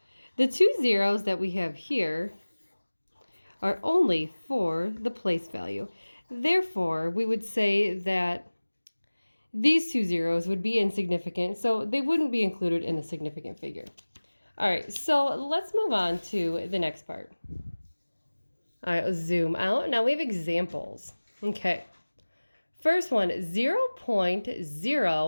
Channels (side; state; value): both; inverted; correlation -1.00